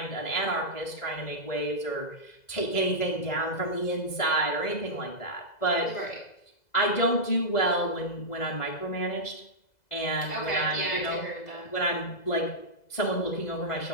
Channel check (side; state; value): right; late; 2.0 ms